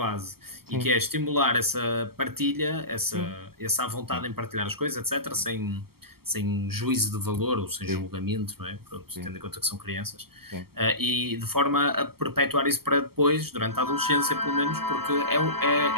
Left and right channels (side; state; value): left; late; 0.95 ms